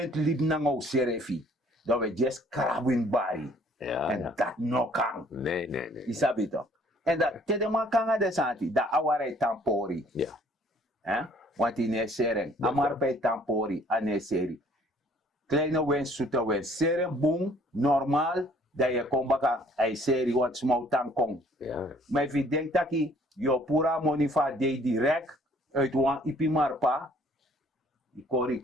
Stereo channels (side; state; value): both; normal; correlation 0.59